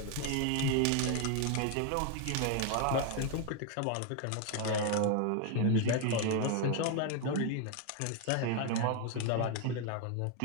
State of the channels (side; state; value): both; different; correlation 0.01